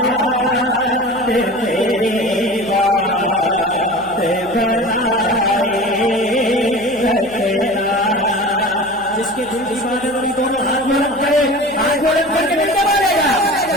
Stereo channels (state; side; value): noise; right; hum, 23 dB below the sound